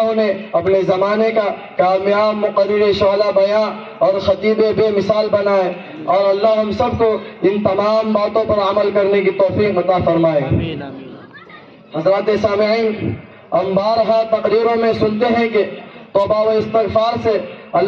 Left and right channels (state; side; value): identical; both; correlation 1.00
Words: نے اپنے زمانے کا کامیاب مقرر شعلہ بیاں اور خطیب بے مثال بنائے، اور اللہ ہم سب کو ان تمام باتوں پر عمل کرنے کی توفیق عطا فرمائے۔ حضرات سامعین، ہم بارہا تقریروں میں سنتے ہیں کہ توبہ و استغفار سے